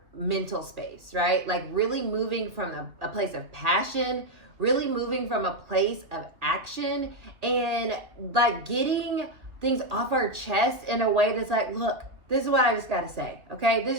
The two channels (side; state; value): left; late; 2.0 ms